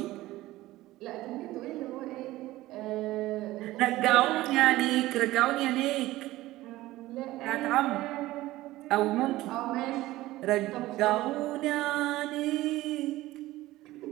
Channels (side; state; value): left; quieter; 17.0 dB